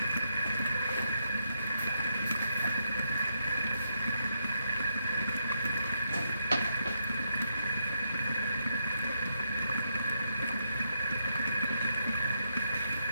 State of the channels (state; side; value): inverted; both; correlation -0.80